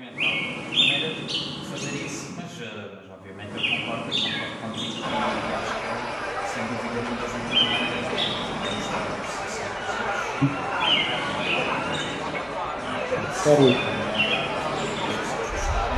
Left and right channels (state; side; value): identical; both; correlation 1.00